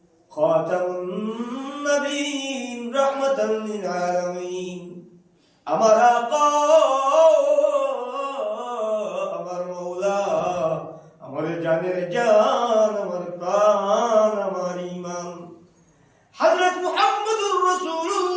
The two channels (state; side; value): identical; both; correlation 1.00